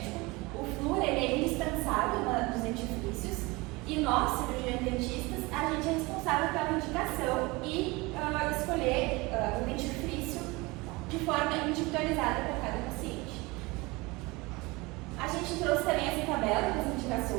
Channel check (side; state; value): left; quieter; 23.8 dB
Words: O flúor ele é indispensável nos dentifrícios. E nós, cirurgiões dentistas, a gente é responsável pela indicação e escolher o dentifrício de forma individualizada para cada paciente. A gente trouxe também essa tabela com as